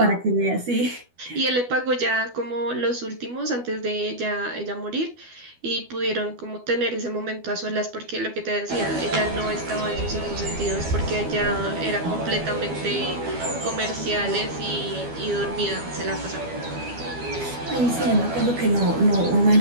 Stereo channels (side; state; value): left; late; 12 ms